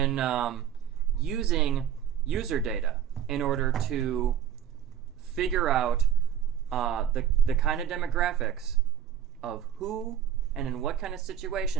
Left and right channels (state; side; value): quieter; left; 9.4 dB